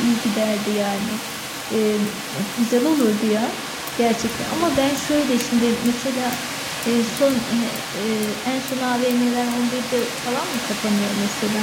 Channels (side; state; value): both; identical; correlation 1.00